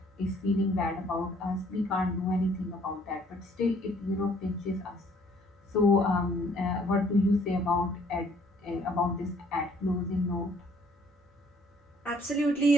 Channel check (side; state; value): both; normal; correlation 0.61